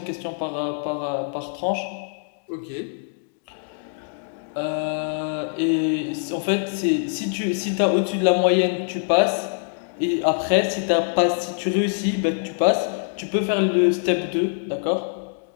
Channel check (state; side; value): silent; right; digital silence